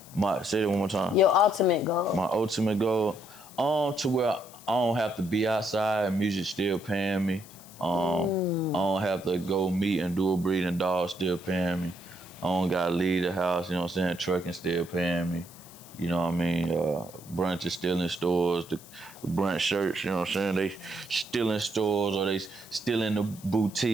Say that one more time. Your ultimate goal. My ultimate goal, to where I don't have to be outside, music still paying me. I don't have to go meet and do a breeding dog, still paying me. I don't gotta leave the house, you know what I'm saying? Trucking still paying me. You know what I mean? Brunch is still in stores. The brunch shirts, you know what I'm saying? They still in stores, or they still in the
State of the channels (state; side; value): noise; left; hiss, 20 dB below the sound